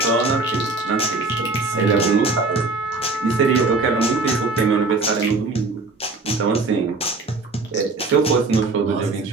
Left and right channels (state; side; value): quieter; left; 3.6 dB